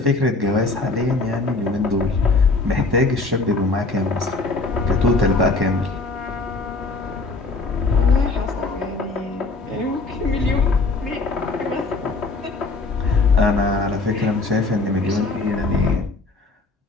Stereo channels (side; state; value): right; quieter; 3.5 dB